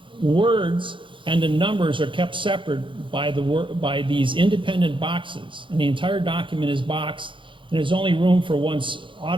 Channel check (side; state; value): left; late; 0.24 ms